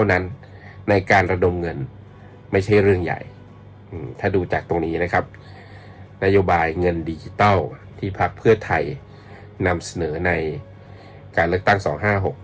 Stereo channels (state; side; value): identical; both; correlation 1.00